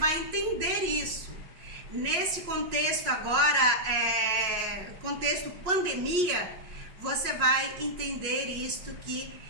entender isso. Nesse contexto agora, contexto pandemia, você vai entender isto, que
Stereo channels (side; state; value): left; late; 5.5 ms